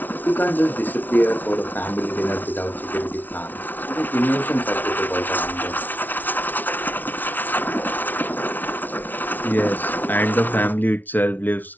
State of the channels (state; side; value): late; right; 0.083 ms